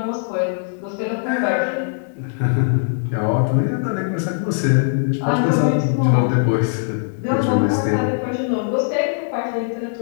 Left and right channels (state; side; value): silent; right; digital silence